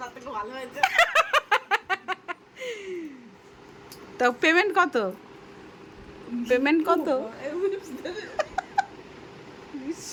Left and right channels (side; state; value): both; identical; correlation 1.00